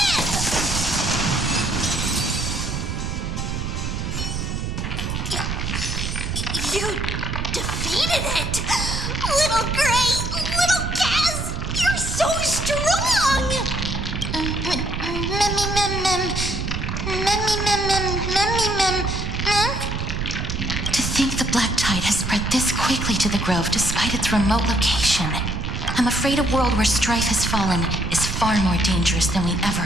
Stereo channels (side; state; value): right; noise; rumble, 3 dB below the sound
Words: You defeated it! Little Gray, little Kaz, you're so strong! To think the black tide has spread this quickly to the Grove despite its remote location. I'm afraid a world where strife has fallen is far more dangerous than we ever